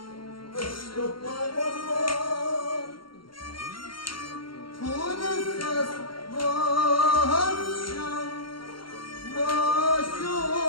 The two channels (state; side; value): late; right; 0.73 ms